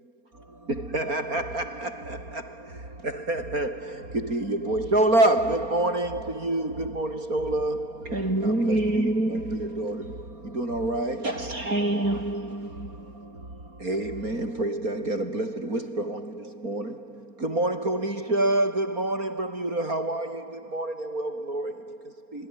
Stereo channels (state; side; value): late; left; 4.3 ms